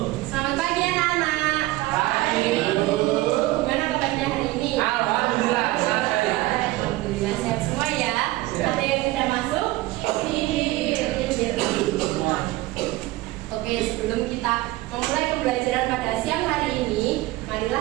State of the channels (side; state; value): left; quieter; 18.4 dB